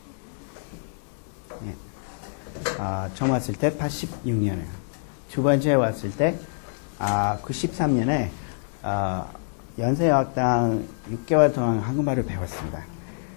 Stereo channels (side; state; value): right; silent; digital silence